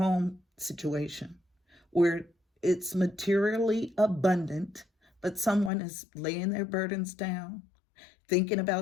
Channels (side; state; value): right; drops out; at 5.7 s